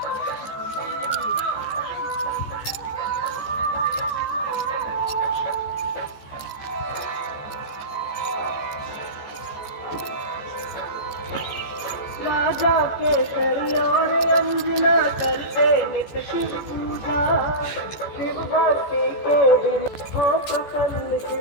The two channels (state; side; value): late; right; 14 ms